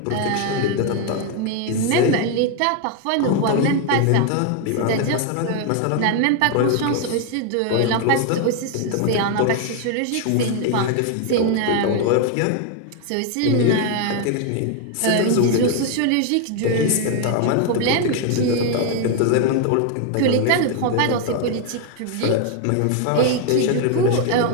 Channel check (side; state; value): both; different; correlation 0.00